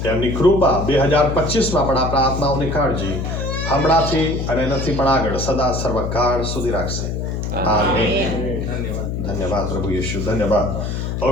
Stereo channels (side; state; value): left; noise; hum, 3 dB below the sound